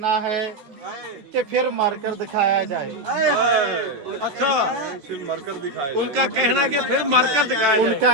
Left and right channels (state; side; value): late; left; 14 ms